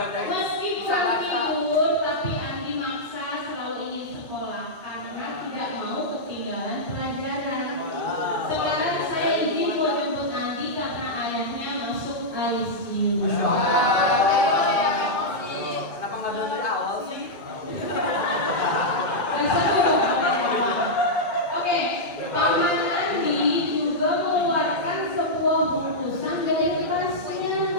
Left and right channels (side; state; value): right; late; 1.9 ms